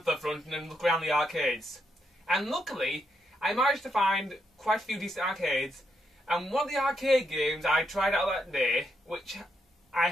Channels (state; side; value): normal; both; correlation 0.79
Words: to the front and then look around the arcades. And luckily, I managed to find quite a few decent arcades. And one of the arcade games I tried out that day, which I